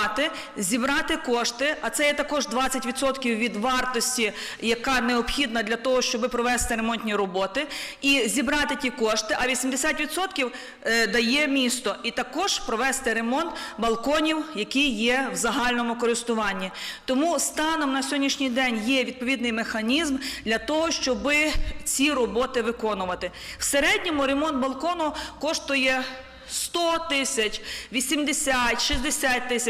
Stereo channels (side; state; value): both; identical; correlation 1.00